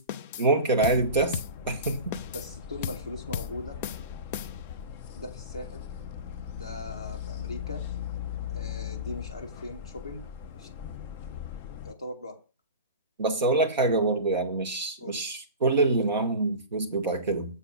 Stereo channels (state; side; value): inverted; both; correlation -0.32